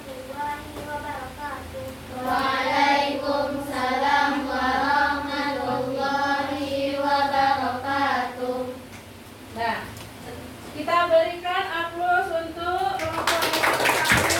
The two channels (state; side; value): identical; both; correlation 1.00